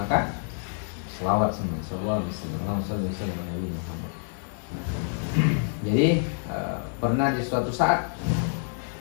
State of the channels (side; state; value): right; silent; digital silence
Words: selawat semua, sallallahu alaihi wasallam Nabi Muhammad. Jadi pernah di suatu saat